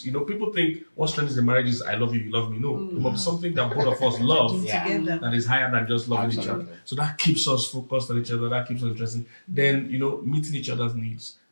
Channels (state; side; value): inverted; both; correlation -1.00